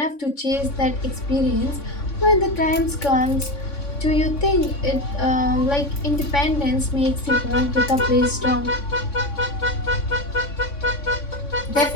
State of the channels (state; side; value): late; right; 3.5 ms